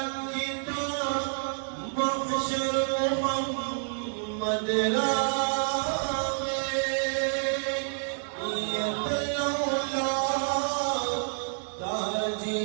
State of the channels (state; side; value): silent; left; 59 dB below the other